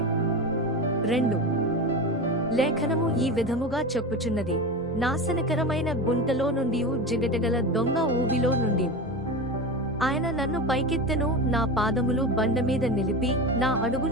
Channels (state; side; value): normal; both; correlation 0.24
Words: లేఖనము ఈ విధముగా చెప్పుచున్నది, నాశనకరమైన గుంటలో నుండి జిగటగల దొంగ ఊబిలో నుండి ఆయన నన్ను పైకెత్తెను, నా పాదములు బండమీద నిలిపి నా